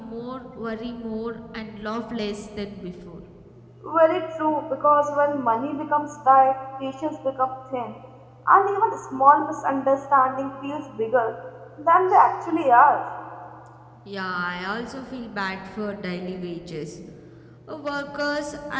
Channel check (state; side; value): identical; both; correlation 1.00